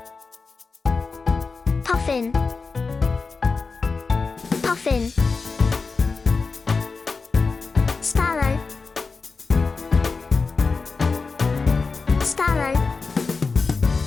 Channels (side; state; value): right; quieter; 4.4 dB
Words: puffin, puffin. Sparrow, sparrow.